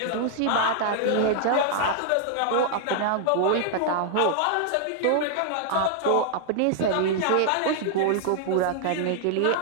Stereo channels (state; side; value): different; both; correlation 0.00